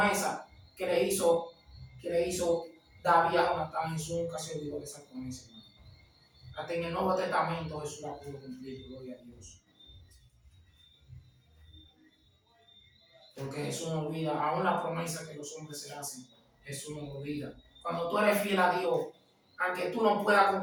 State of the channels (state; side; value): identical; both; correlation 1.00